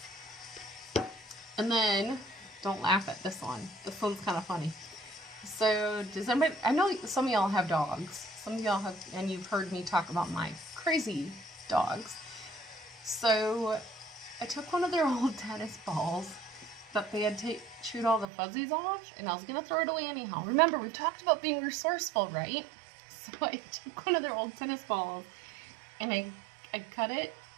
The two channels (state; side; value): drops out; left; at 18.2 s